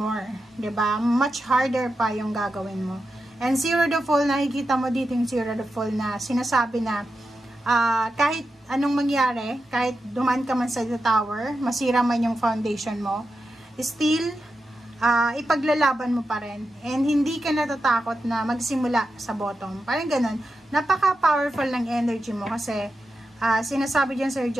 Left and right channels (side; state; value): both; normal; correlation 0.89